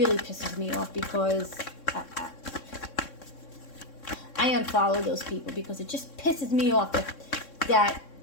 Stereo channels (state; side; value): late; right; 3.6 ms